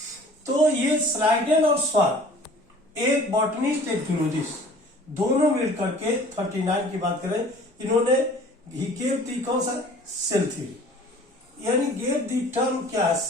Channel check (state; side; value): normal; both; correlation 0.48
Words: तो ये स्लाइडेन और स्वान, एक बॉटनिस्ट एक जूलॉजिस्ट, दोनों मिल करके 39 की बात करें, इन्होंने ही गेव दी कौन सा, सेल थ्योरी, यानी गेव दी टर्म क्या है,